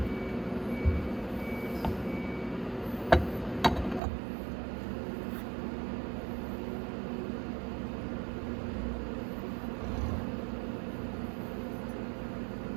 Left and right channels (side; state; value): left; drops out; at 4.0 s